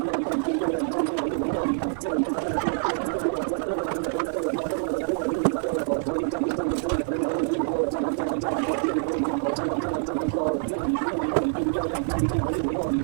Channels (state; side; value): silent; left; digital silence